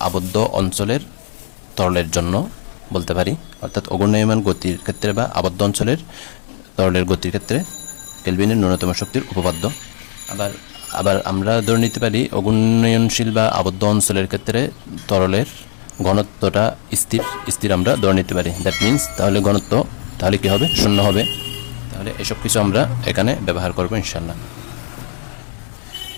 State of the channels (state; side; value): silent; right; 60 dB below the other